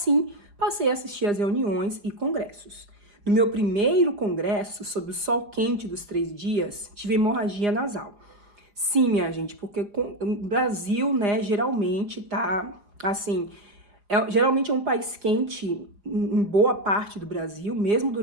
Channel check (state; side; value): late; left; 4.9 ms